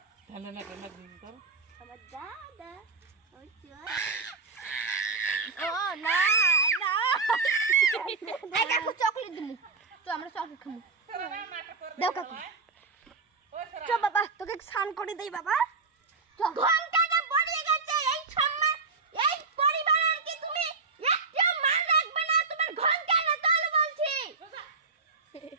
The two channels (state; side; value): quieter; left; 4.3 dB